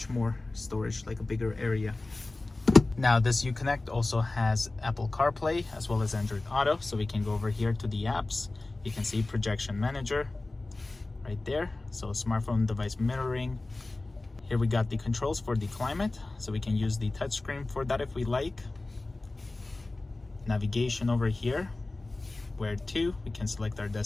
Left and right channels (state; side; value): quieter; right; 3.1 dB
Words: more storage, like a bigger area. Now this Uconnect also has Apple CarPlay as well as Android Auto, so we can go over here to the apps. You can see projection manager right there, so smartphone device mirroring. Here we got the controls for the climate, so we can use the touchscreen for that if we like. Navigation over here, where to, we can select our